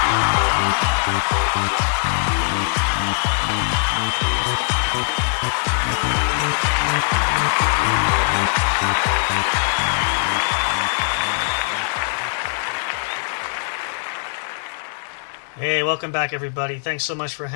Hey, welcome back, everybody. Thanks so much for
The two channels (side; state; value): right; silent; digital silence